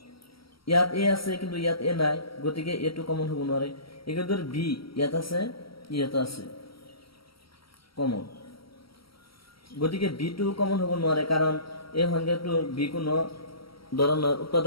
ইয়াত এ আছে কিন্তু ইয়াত এ নাই, গতিকে এটো কমন হ'ব নোৱাৰে। একেদৰে বি ইয়াত আছে, ইয়াত আছে কমন, গতিকে বি টো কমন হ'ব নোৱাৰে, কাৰণ এই সংখ্যাটো বি কোনো ধৰণৰ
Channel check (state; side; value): late; right; 0.75 ms